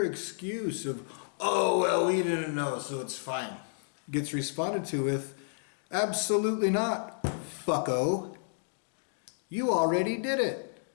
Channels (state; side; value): silent; right; digital silence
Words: excuse of, oh, well, we didn't know, so it's fine, gets responded to with, absolutely not, fucko. You already did it.